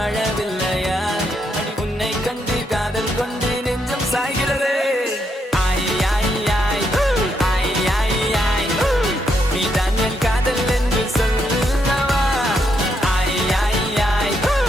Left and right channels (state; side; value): normal; both; correlation 0.78